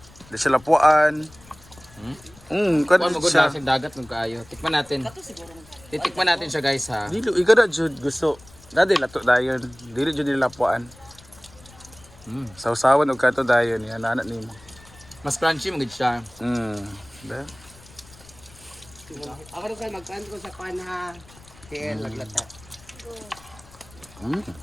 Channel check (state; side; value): noise; left; rumble, 23 dB below the sound